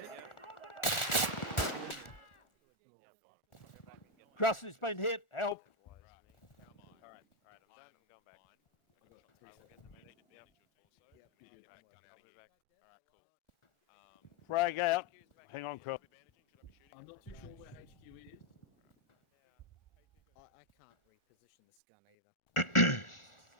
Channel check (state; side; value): late; right; 1.4 ms